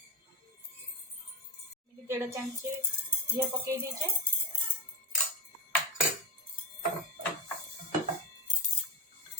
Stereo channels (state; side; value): normal; both; correlation 0.19